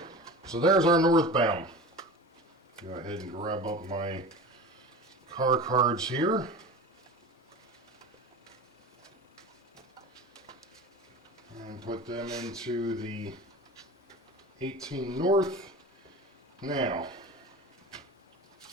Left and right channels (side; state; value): both; normal; correlation 0.33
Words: So there's our northbound. Go ahead and grab up my car cards here. And put them into the 18 North. Now,